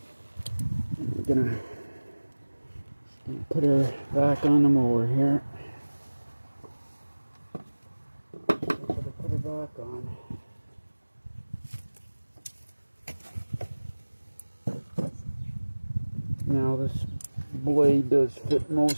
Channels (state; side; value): inverted; both; correlation -1.00